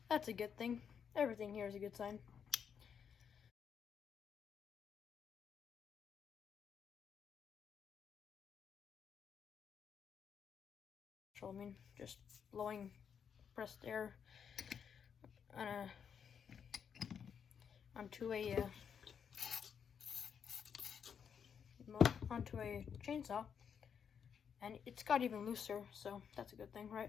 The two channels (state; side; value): quieter; right; 7.4 dB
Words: That's a good thing. Everything here is a good sign. So I mean, just blowing pressed air on onto a chainsaw, and it's got even looser, so that's a good thing, right?